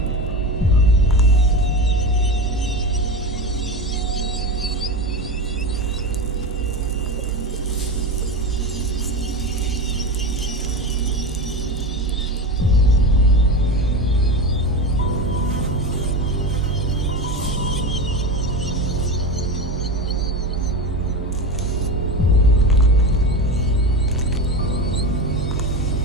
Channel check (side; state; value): both; normal; correlation 0.23